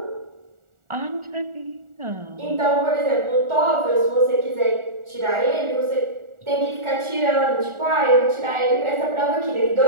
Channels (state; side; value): late; left; 1.4 ms